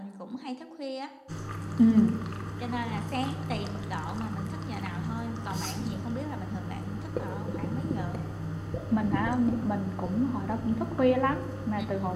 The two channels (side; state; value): both; identical; correlation 1.00